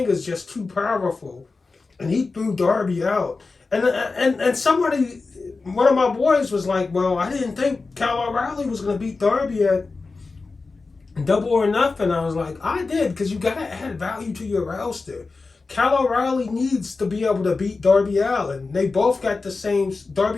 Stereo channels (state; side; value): quieter; right; 4.0 dB